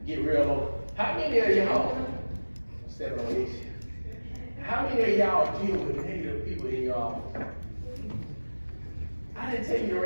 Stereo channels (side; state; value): both; inverted; correlation -1.00